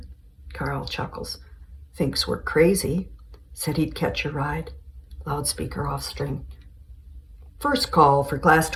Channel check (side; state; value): both; identical; correlation 1.00